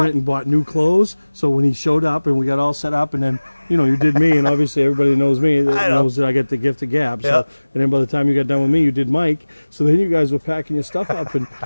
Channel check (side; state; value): both; inverted; correlation -1.00